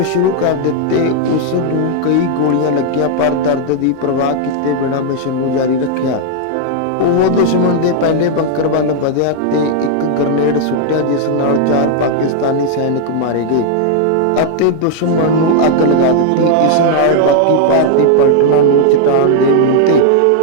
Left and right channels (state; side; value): different; both; correlation -0.01